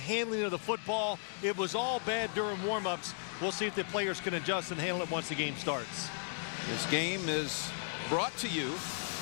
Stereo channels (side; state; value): right; silent; digital silence